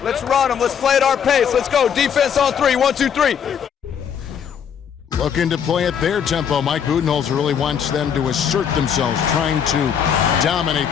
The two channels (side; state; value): right; quieter; 7.9 dB